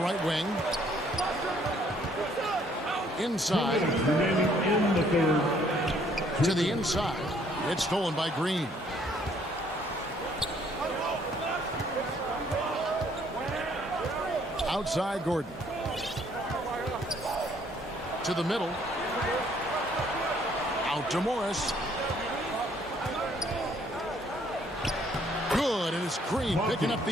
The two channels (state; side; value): normal; both; correlation 0.64